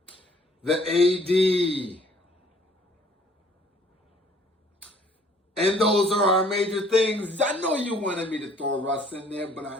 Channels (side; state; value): both; normal; correlation 0.59